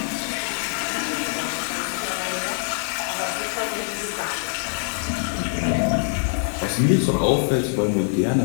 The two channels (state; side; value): silent; right; digital silence